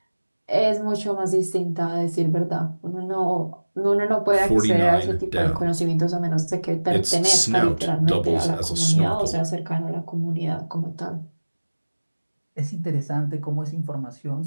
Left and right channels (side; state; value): both; inverted; correlation -1.00